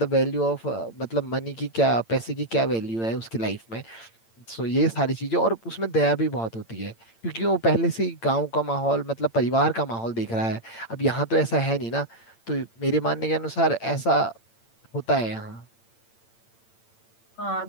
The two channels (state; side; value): late; right; 8.8 ms